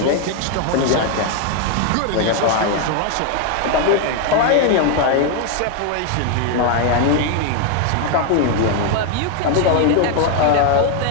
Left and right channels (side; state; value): both; different; correlation 0.01